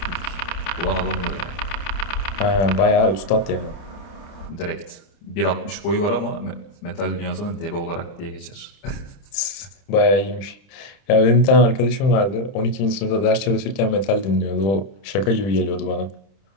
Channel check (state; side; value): late; right; 31 ms